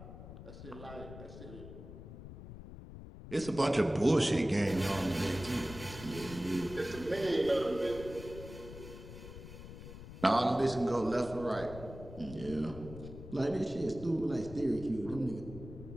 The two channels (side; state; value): left; noise; rumble, 13 dB below the sound